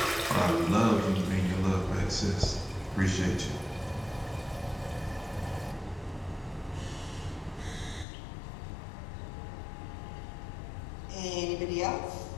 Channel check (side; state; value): right; drops out; at 8.1 s